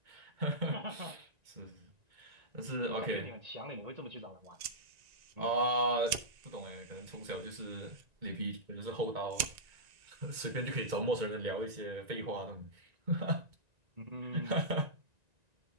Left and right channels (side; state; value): left; late; 1.9 ms